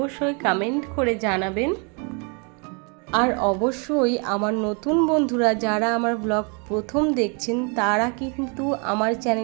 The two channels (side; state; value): left; quieter; 35.1 dB